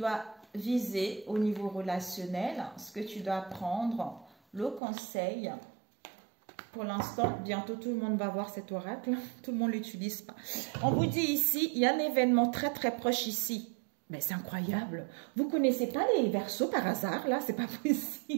viser au niveau relationnel, ce que tu dois prendre, le conseil. Pour l'instant, bientôt tout le monde va voir cet oracle. Tout le monde ne l'utilise pas. On vous dit ici, il y a un événement très très proche ici. Mais c'est incroyable. Vous ne connaissez pas les Verseaux par hasard, là? C'est pas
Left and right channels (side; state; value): left; drops out; at 4.8 s